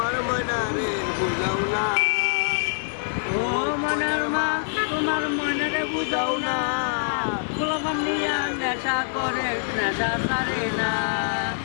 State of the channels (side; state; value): right; silent; digital silence